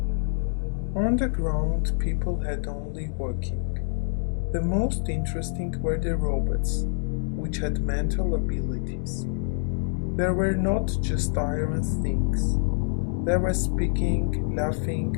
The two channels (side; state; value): right; silent; digital silence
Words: On the ground, people had only walking. The most interesting were the robots, which had mental abilities. There were not just iron things. They were speaking,